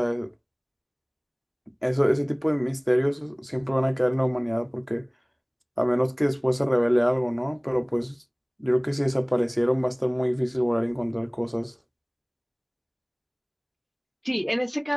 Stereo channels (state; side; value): identical; both; correlation 1.00